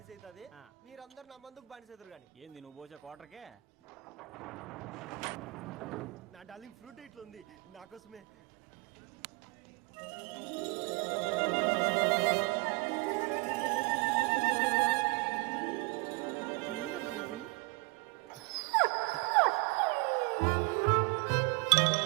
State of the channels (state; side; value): quieter; left; 26.5 dB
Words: అవుతుంది, మీరందరు నా మందుకు బానిస అవుతారు. కానీ ఏంది నువ్వు పోసే కోటర్కే? నా డార్లింగ్ ఫ్రూట్ ఇట్లా ఉంది నా కోసమే. ఏందబ్బా ఇది?